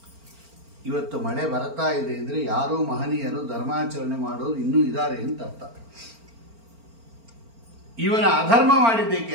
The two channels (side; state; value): left; late; 4.4 ms